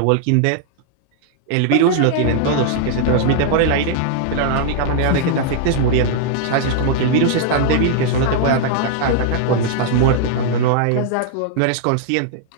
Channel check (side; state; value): both; different; correlation -0.01